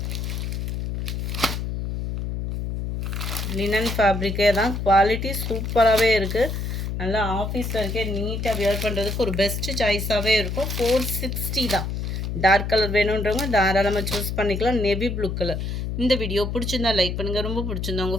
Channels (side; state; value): left; noise; hum, 3 dB below the sound